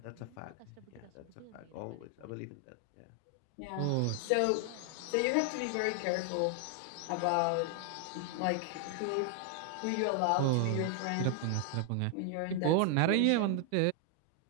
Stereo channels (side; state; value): both; different; correlation 0.00